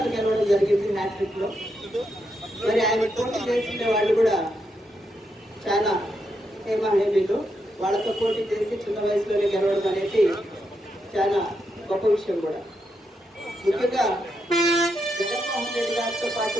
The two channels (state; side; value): normal; both; correlation 0.82